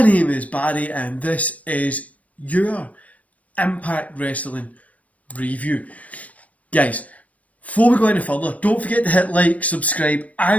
name is Barry and this is your Impact Wrestling review. Guys, before we go any further, don't forget to hit like, subscribe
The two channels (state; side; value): late; right; 0.068 ms